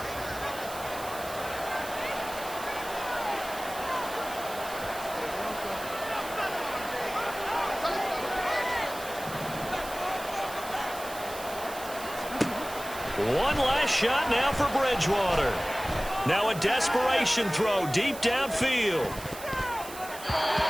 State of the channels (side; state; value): right; noise; hiss, 13 dB below the sound